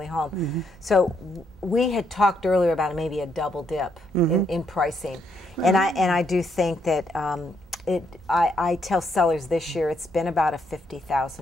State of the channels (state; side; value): normal; both; correlation 0.75